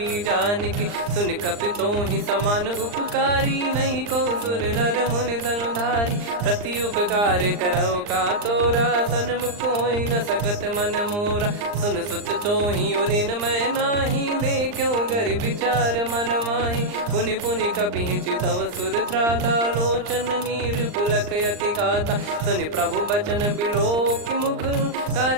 जान की सुन कपितो ही समान उपकारी नहीं को सुर नर मुनि तनुधारी प्रति उपकार करो का तोरा सन्मुख कोई न सकत मन मोरा सुन सुत तो ही उदिन मैं नाही देखो गर विचार मन माही पुनि पुनि कपि चितव सुर त्राता लोचन नीर पुलक यति गाता सुनि प्रभु बचन बिलोक मुख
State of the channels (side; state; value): left; late; 39 ms